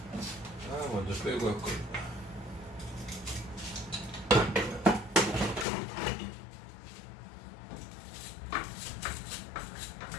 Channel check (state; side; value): drops out; right; at 5.7 s